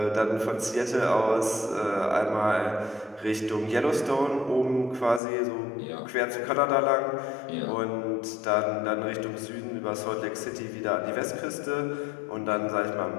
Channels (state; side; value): drops out; right; at 5.2 s